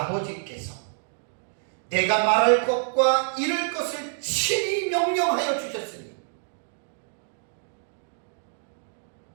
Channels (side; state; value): left; silent; digital silence